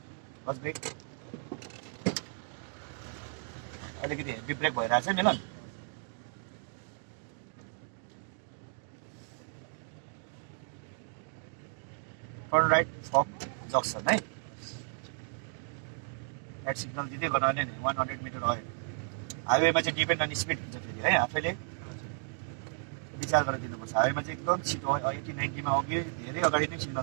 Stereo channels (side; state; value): left; silent; 55 dB below the other